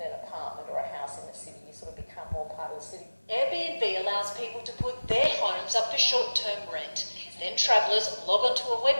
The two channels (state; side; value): inverted; both; correlation -1.00